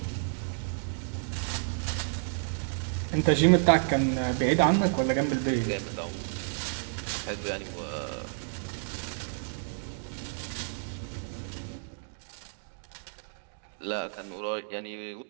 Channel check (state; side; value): silent; left; digital silence